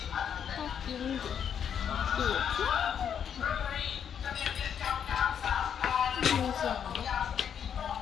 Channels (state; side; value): quieter; right; 8.2 dB